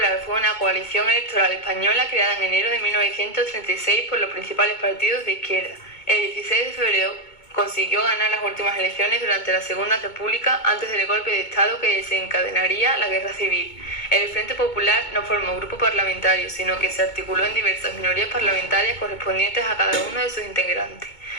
fue una coalición electoral española creada en enero de 1936 por los principales partidos de izquierda. El 16 de febrero consiguió ganar las últimas elecciones durante la Segunda República antes del golpe de Estado que desencadenaría la Guerra Civil. El Frente Popular no formó grupo parlamentario, sino que se articuló en diversas minorías parlamentarias correspondientes a cada uno de sus integrantes.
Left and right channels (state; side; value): late; right; 2.2 ms